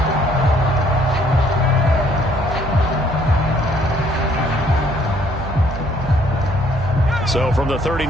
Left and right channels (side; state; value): right; noise; hum, 9 dB below the sound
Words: So from the